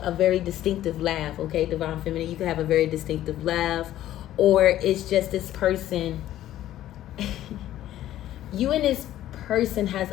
very distinctive laugh. Okay, Divine Feminine, you can have a very distinctive laugh, or it's just this person. You and this person has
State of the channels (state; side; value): quieter; right; 13.1 dB